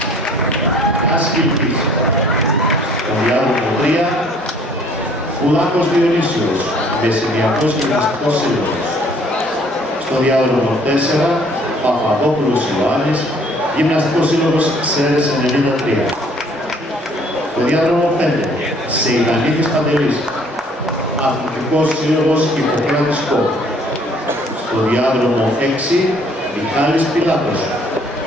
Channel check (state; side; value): normal; both; correlation 0.58